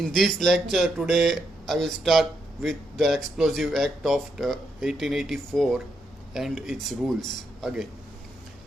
this lecture today I will start with the Explosive Act of 1884 and its rules again.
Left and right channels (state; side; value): normal; both; correlation 0.80